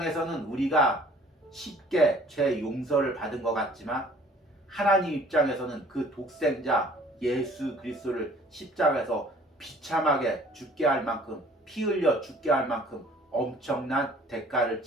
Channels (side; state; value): both; normal; correlation 0.54